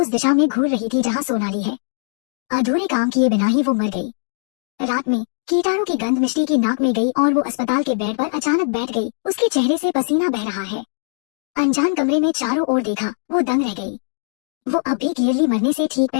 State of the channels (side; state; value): right; silent; digital silence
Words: दिशा में घूर रही थी जहाँ सोनाली है। अधूरे काम किए बिना ही वो मर गई। रात में कीटाणु की गंध मिष्टी की नाक में गई और वो अस्पताल के बेड पर अचानक बैठ गई। उसके चेहरे से पसीना बह रहा है। अनजान कमरे में चारों ओर देखा, वो दंग रह गई। वो अब भी क्लियरली मरने से ठीक